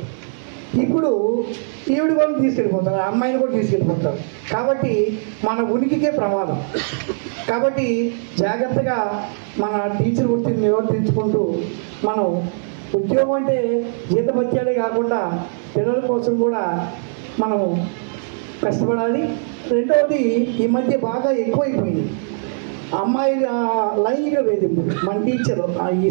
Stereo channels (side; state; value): left; silent; 66 dB below the other